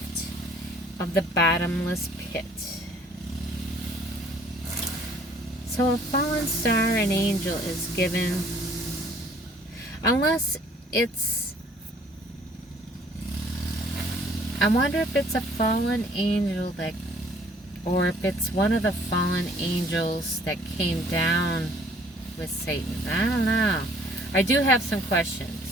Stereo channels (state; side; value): normal; both; correlation 0.57